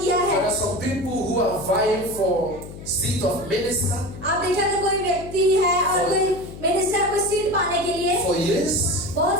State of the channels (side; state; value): left; noise; hum, 13 dB below the sound